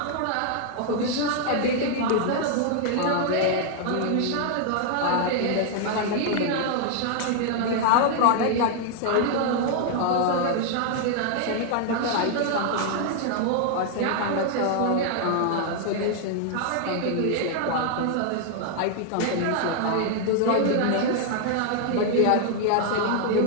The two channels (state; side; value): different; both; correlation 0.00